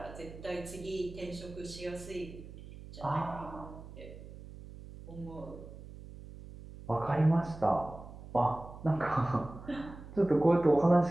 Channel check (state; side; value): noise; right; hum, 15 dB below the sound